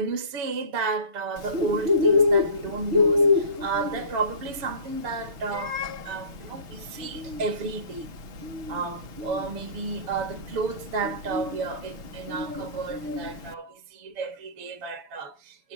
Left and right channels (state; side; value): late; left; 6.5 ms